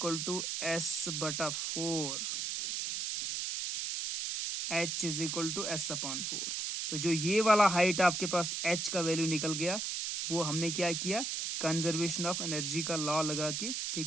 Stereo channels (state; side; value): noise; right; hiss, 2 dB below the sound